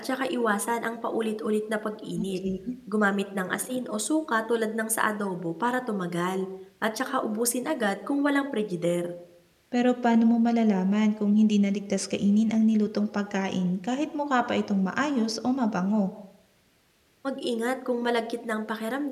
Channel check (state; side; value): identical; both; correlation 1.00